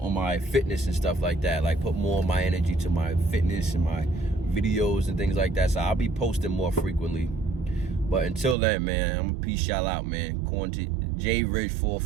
my fitness and stuff like that. Like, put more of my energy to my fitness and my videos and things like that. So I'll be posting more frequently. But until then, man, I'm going to peace y'all out, man. Quarantine, J Ridge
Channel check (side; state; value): left; drops out; at 8.6 s